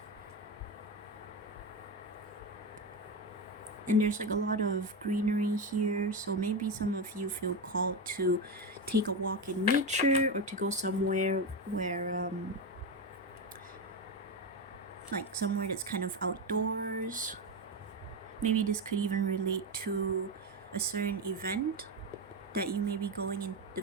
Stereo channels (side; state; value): both; normal; correlation 0.14